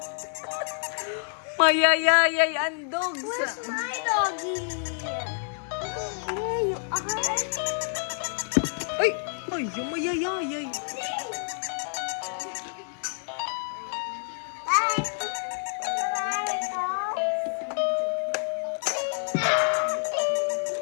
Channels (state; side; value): silent; right; 59 dB below the other